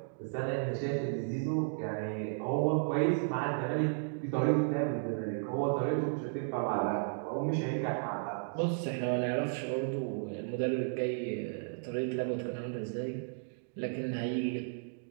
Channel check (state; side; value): silent; left; digital silence